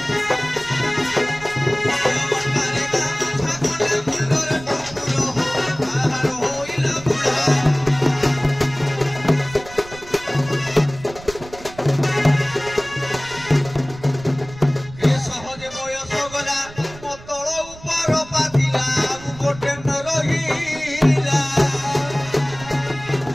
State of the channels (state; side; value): noise; right; rumble, 18 dB below the sound